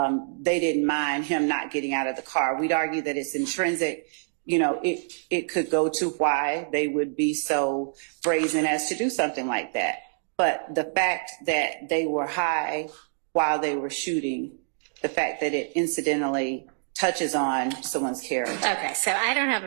they didn't mind him not getting out of the car. We'd argue that it's intrinsic. It could go to why they would be so brazen as to do something like that. But the fact that they were high while they were shooting, the fact that it incidentally touches on someone's character. Okay, so I don't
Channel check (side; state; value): left; silent; digital silence